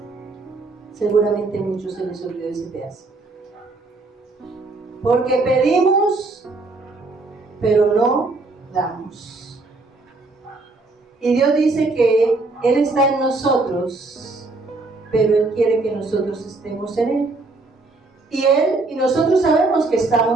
Seguramente a muchos se les olvidó ese pedazo. Porque pedimos, pero no damos. Y Dios dice que Él está en nosotros, pero Él quiere que nosotros estemos en Él. Y nosotros sabemos que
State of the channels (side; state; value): left; quieter; 3.4 dB